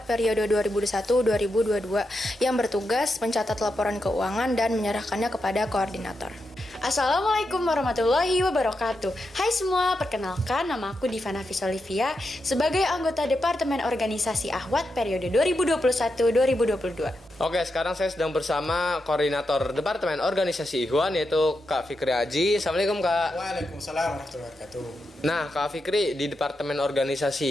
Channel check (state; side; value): normal; both; correlation 0.86